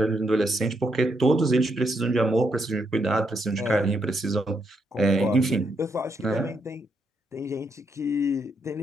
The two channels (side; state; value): both; normal; correlation 0.78